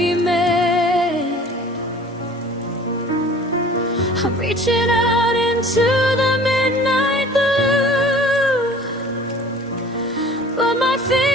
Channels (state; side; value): normal; both; correlation 0.47